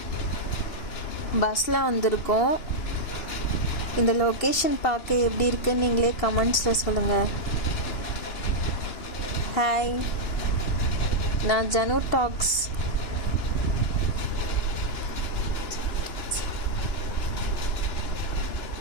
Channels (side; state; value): right; late; 2.9 ms